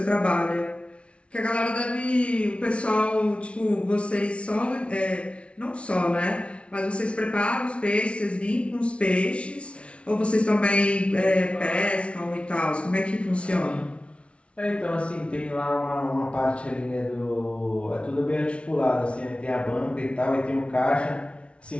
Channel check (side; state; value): right; late; 0.060 ms